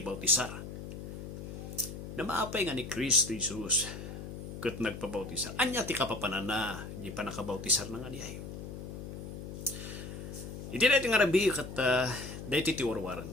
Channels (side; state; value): left; noise; hum, 9 dB below the sound